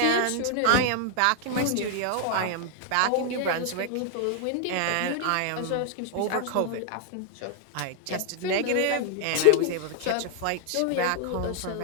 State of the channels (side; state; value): both; different; correlation 0.00